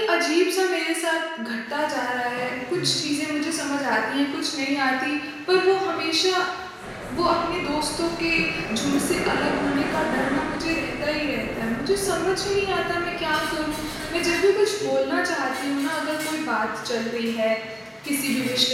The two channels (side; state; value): both; identical; correlation 1.00